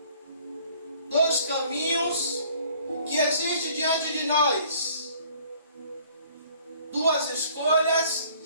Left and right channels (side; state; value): both; inverted; correlation -0.56